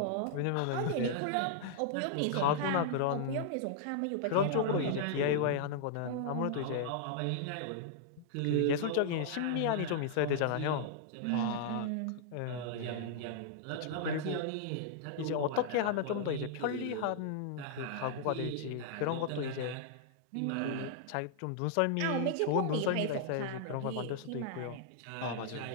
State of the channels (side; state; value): both; different; correlation -0.01